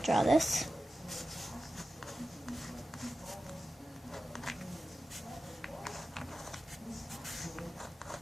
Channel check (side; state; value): both; normal; correlation 0.94